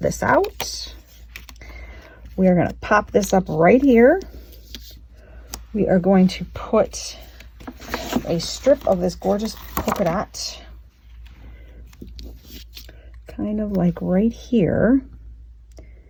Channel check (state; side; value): identical; both; correlation 1.00